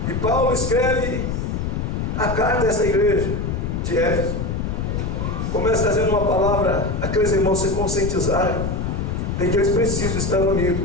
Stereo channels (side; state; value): left; noise; rumble, 2 dB below the sound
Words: e Paulo escreve a carta a essa igreja de Éfeso. Começa trazendo uma palavra, aqueles irmãos se conscientizarem de que eles precisam estar